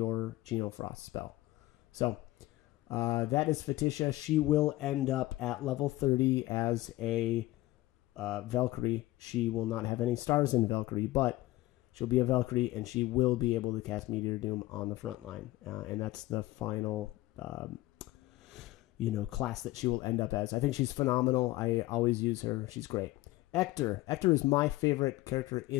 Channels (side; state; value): right; quieter; 17.9 dB